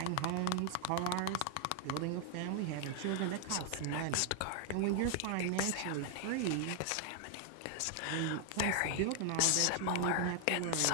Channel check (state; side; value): different; both; correlation 0.00